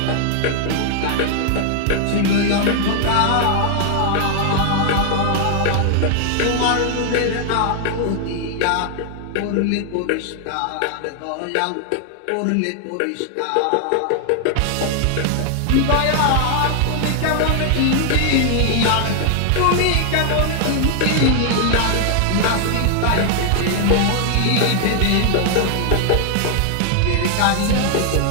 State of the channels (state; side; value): different; both; correlation 0.00